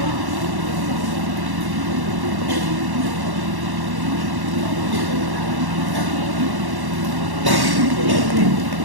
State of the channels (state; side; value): late; left; 1.1 ms